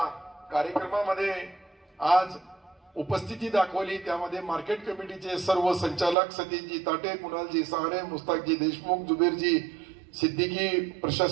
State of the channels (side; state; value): left; drops out; at 6.2 s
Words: कार्यक्रमामध्ये आज उपस्थिती दाखवली त्यामध्ये मार्केट कमिटीचे सर्व संचालक सतीशजी ताटे, कुणालजी सहारे, मुस्ताकजी देशमुख, जुबेरजी सिद्दीकी,